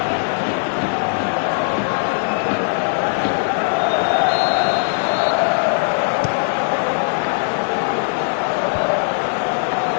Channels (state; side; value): silent; right; 66 dB below the other